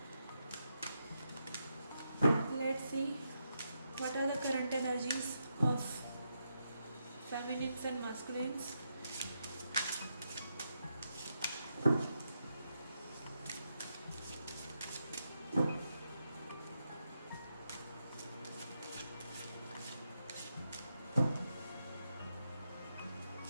Let's see what are the current energies of feminines and masculines.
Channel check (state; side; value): inverted; both; correlation -0.83